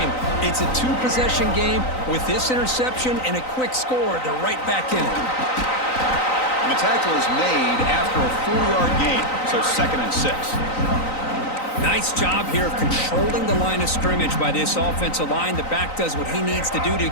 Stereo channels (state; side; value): late; right; 3.9 ms